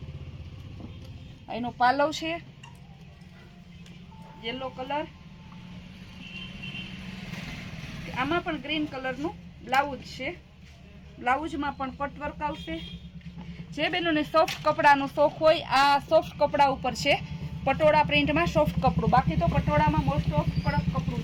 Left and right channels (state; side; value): identical; both; correlation 1.00